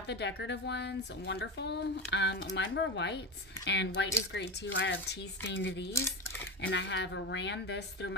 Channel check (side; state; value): both; normal; correlation 0.20